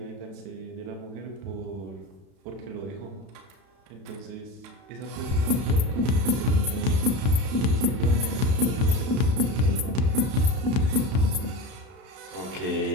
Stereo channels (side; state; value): left; late; 31 ms